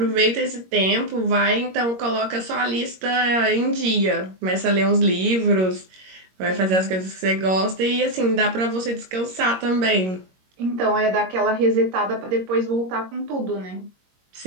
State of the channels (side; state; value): left; late; 22 ms